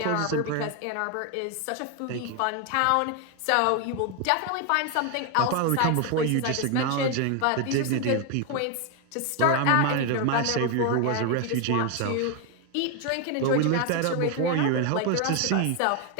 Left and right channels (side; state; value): both; different; correlation 0.01